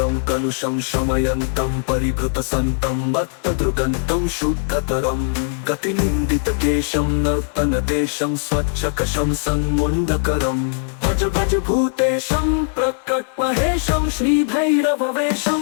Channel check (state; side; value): silent; right; digital silence